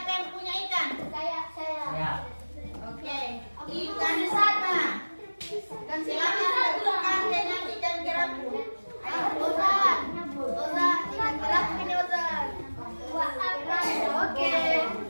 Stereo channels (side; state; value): both; inverted; correlation -1.00